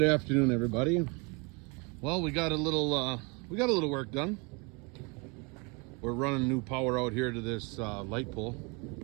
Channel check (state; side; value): quieter; left; 30.5 dB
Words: afternoon, everybody. Well, we got a little work done. We're running new power out here to this light pole.